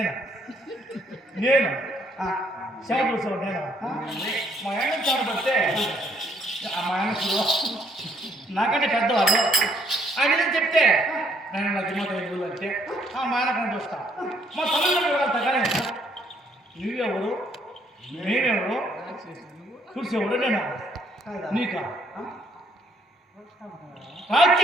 నేను చెమట తుడిచేవాడు నేను మా ఆయన చెమట పడితే మా ఆయన నాకంటే పెద్దవాళ్ళు ఆయన చెప్తే నేను నా దిమ్మత ఎదుగులు అంటే మా ఆయన కంటే వస్తా మా తల్లిదండ్రులు వెళ్తా కానీ నువ్వెవరు నేనెవరు చూసేవాడు నేను నీకా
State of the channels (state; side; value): normal; both; correlation 0.68